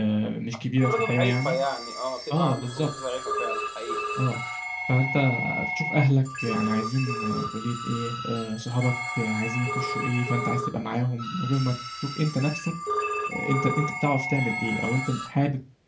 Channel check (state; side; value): identical; both; correlation 1.00